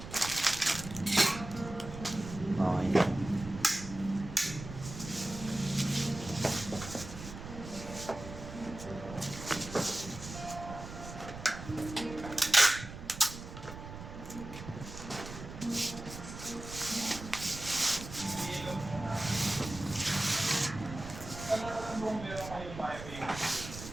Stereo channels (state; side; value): noise; right; rumble, 11 dB below the sound